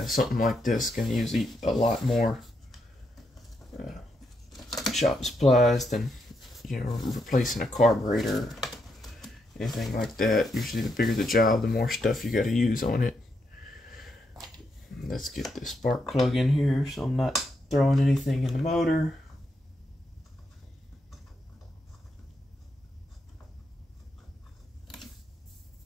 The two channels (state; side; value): normal; both; correlation 0.80